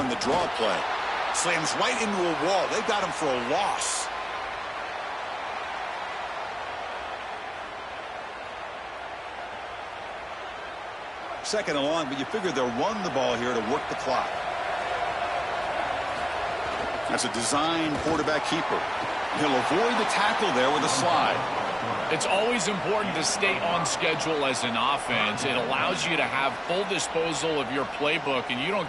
the draw play. Slams right into a wall. They've got him for a loss. Second and long, but you figure they'll run the ball here to work the clock. That's a design quarterback keeper. He'll avoid the tackle there with a slide. It's always important to stay on schedule as an offense. It allows you to have full disposal of your playbook, and you don't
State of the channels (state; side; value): identical; both; correlation 1.00